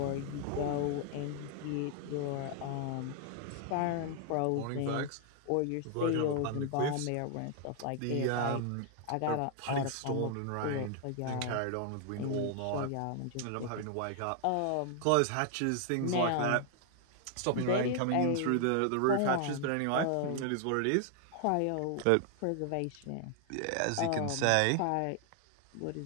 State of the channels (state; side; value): different; both; correlation 0.00